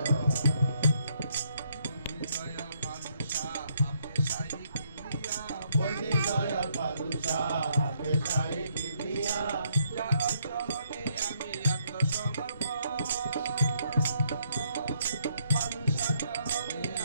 বন্দি দয়াল বাদুশা পেশাই কিবরিয়া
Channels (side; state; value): both; inverted; correlation -0.71